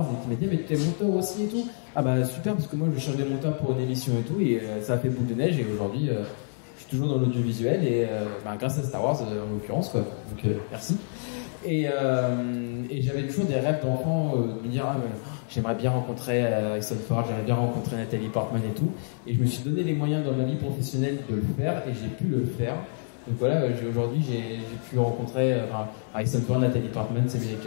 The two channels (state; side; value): silent; right; digital silence